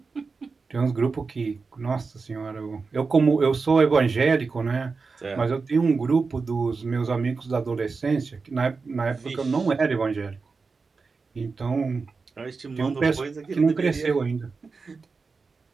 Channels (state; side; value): quieter; left; 4.5 dB